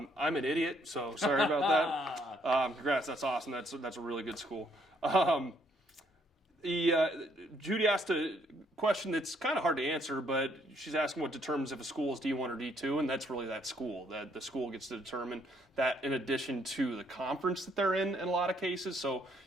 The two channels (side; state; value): both; normal; correlation 0.69